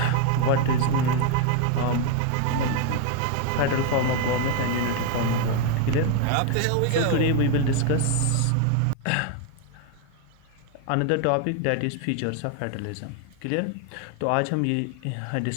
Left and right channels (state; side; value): different; both; correlation 0.01